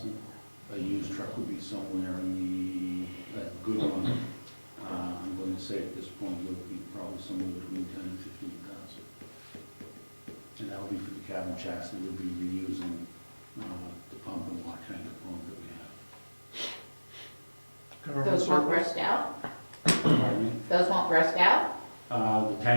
A used truck would be somewhere in the, a good one, I'm going to say at this point, it would be probably somewhere between 10 and 15,000. And that would be for the cabin chassis, we'd be reusing the pump and water tank component that we have. Those won't rust out? Pardon me? Those won't rust out? The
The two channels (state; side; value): inverted; both; correlation -1.00